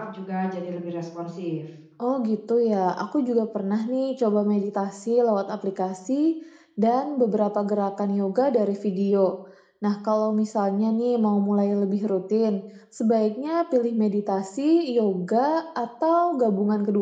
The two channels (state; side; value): identical; both; correlation 1.00